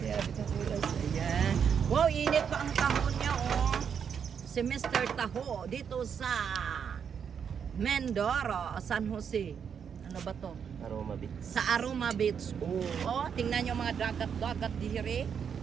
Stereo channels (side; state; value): left; quieter; 7.3 dB